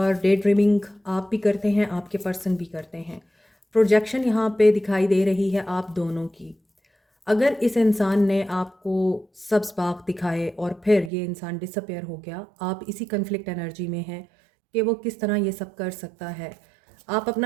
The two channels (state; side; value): drops out; left; at 11.1 s